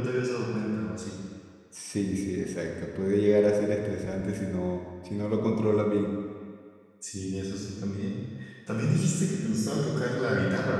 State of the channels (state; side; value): identical; both; correlation 1.00